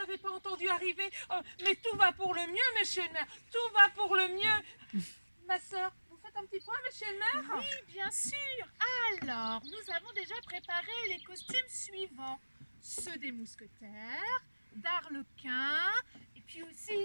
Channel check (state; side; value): inverted; both; correlation -1.00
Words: pas entendu arriver. Mais tout va pour le mieux, monsieur le maire. Tout va pour le mieux. Ma sœur, vous faites un petit point, monsieur le maire? Oui, bien sûr. Alors, nous avons déjà préparé les costumes suivants. Ceux des mousquetaires, d'Arlequin, et puis aussi...